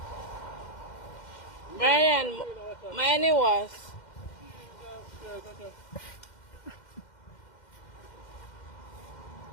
Brian, my name was.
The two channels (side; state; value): right; late; 2.1 ms